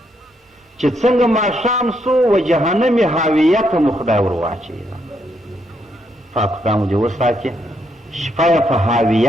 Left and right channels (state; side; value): normal; both; correlation 0.76